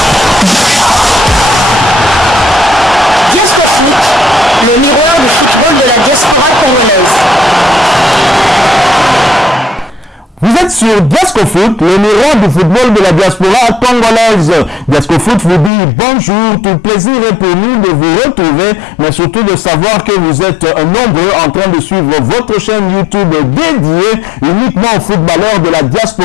Le miroir du football de la diaspora congolaise. Vous êtes sur Diasco Foot, le miroir du football de la diaspora congolaise. Diasco Foot vous dit bonjour, tout plaisir est pour nous de vous retrouver, mais surtout de savoir que vous êtes nombreux en train de suivre votre chaîne YouTube dédiée uniquement aux footballeurs de la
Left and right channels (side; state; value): right; drops out; at 15.7 s